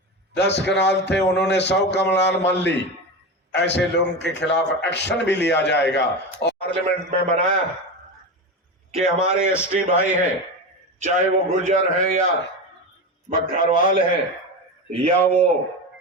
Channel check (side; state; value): both; normal; correlation 0.21